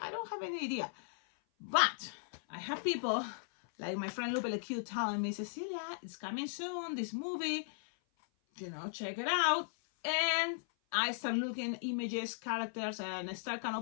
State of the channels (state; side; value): silent; right; 53 dB below the other